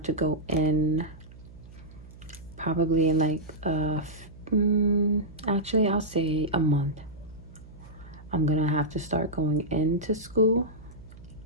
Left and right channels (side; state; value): right; noise; hum, 19 dB below the sound